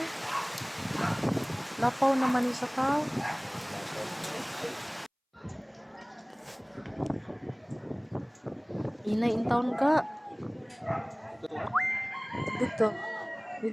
Lapaw naman ni sa tao. Inay in town ka. Dito.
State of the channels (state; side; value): identical; both; correlation 1.00